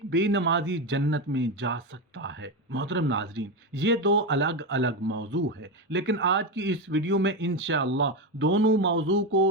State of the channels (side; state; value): both; normal; correlation 0.13